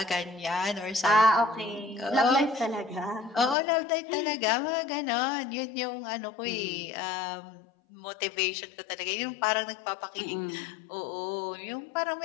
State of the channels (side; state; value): right; drops out; at 3.6 s